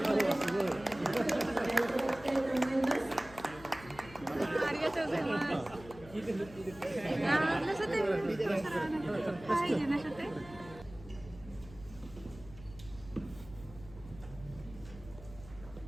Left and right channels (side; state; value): left; noise; hum, 18 dB below the sound